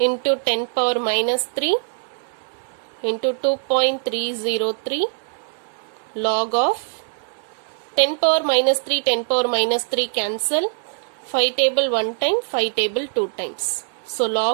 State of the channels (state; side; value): silent; left; 64 dB below the other